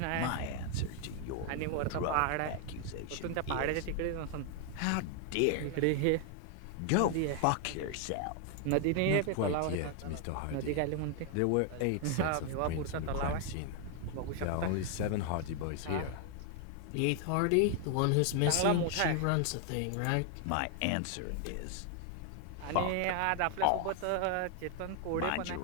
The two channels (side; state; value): both; different; correlation 0.00